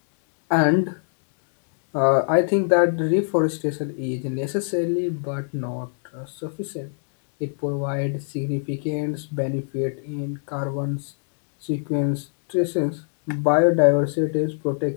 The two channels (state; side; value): silent; right; digital silence